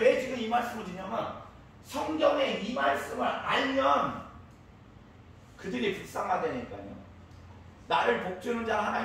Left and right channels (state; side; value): identical; both; correlation 1.00